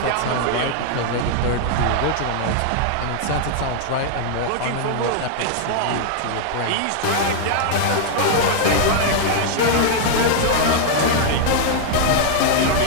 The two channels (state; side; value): different; both; correlation -0.01